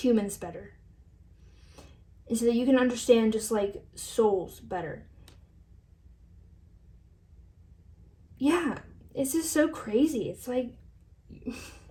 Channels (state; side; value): identical; both; correlation 1.00